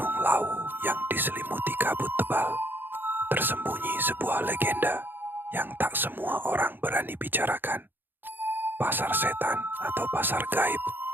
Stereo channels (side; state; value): left; late; 0.095 ms